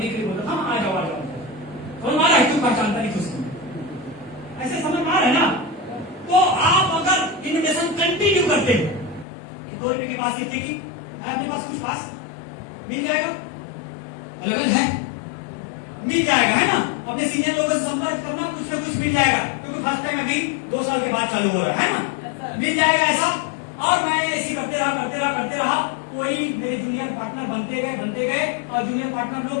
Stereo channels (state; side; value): drops out; right; at 9.2 s